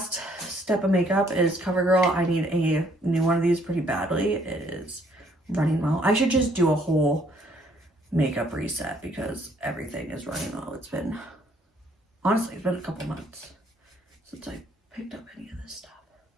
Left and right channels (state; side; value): normal; both; correlation 0.65